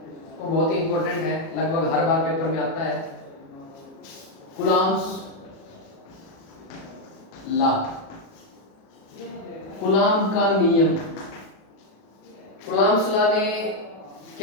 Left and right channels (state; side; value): late; right; 37 ms